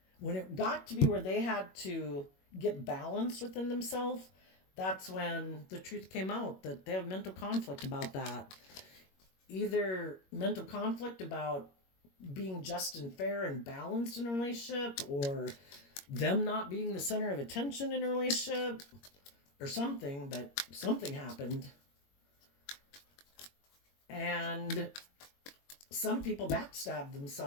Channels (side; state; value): right; late; 21 ms